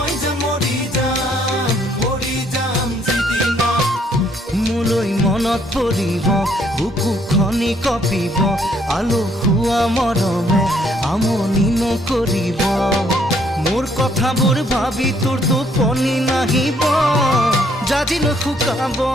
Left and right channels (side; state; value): both; normal; correlation 0.67